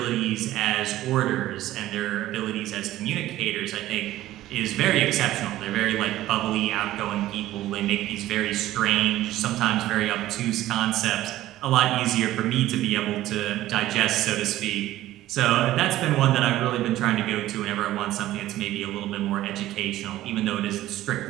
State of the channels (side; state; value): left; quieter; 14.9 dB